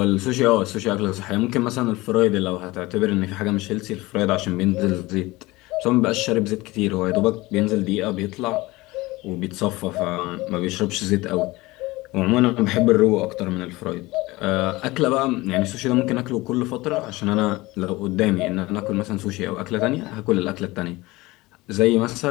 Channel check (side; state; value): right; quieter; 20.7 dB